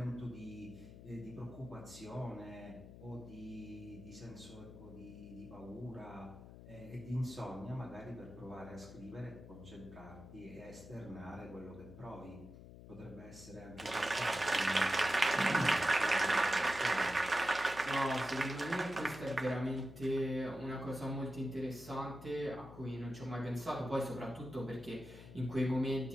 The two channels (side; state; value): left; noise; hum, 15 dB below the sound